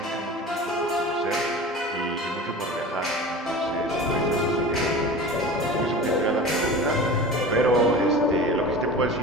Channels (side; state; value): both; normal; correlation 0.35